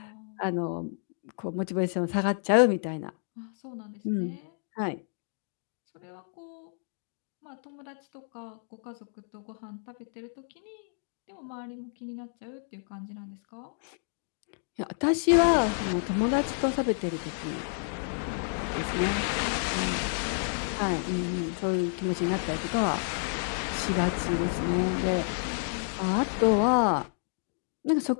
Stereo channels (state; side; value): silent; right; digital silence